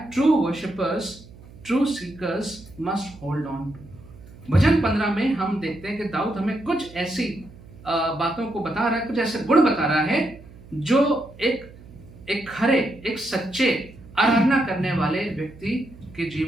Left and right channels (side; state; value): right; noise; hum, 20 dB below the sound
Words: true worshippers, true seekers must hold on to. भजन 15 में हम देखते हैं कि दाऊद हमें कुछ ऐसी बातों को बता रहा है, कुछ ऐसे गुण बता रहा है जो एक खरे, एक सच्चे आराधना करने वाले व्यक्ति के